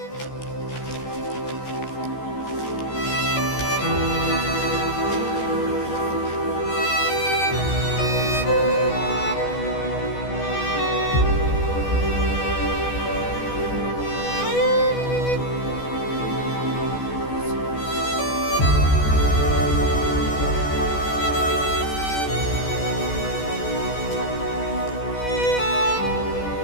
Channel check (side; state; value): right; late; 14 ms